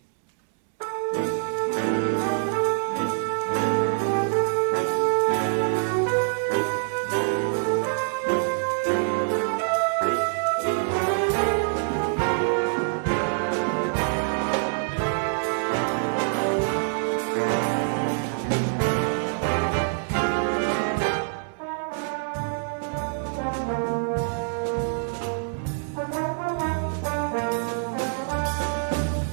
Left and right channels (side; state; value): left; silent; 61 dB below the other